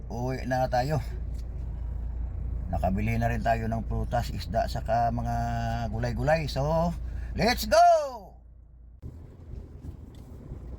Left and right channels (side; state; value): both; identical; correlation 1.00